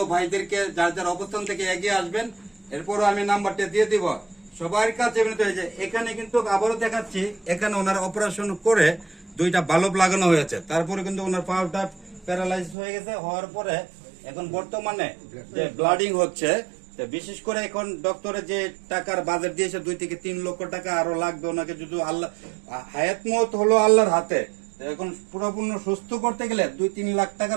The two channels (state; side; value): drops out; left; at 12.8 s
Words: ভাইদেরকে যার যার অবস্থান থেকে এগিয়ে আসবেন। এরপরও আমি নাম্বারটা দিয়ে দিব সবার কাছে। এখানে কিন্তু আবারও দেখাচ্ছি, এখানে ওনার অপারেশন করে দুইটা বাল্ব লাগানো হয়েছে, তারপরে কিন্তু ওনার পাটা প্যারালাইজ হয়ে গেছে। হওয়ার পরে এখন বর্তমানে যে ব্লাডিং হচ্ছে, বিশেষ করে এখন ডক্টরে যে টাকার বাজেট দিয়েছে 2 থেকে 3 লক্ষ টাকা আরো লাগবে ওনাকে। যদি আল্লাহ হায়াত মত হলো আল্লাহর হাতে, এখন পুরোপূর্ণ সুস্থ করতে গেলে 2-3 লাখ টাকা